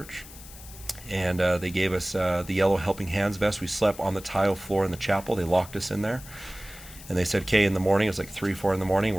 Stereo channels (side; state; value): left; noise; hiss, 17 dB below the sound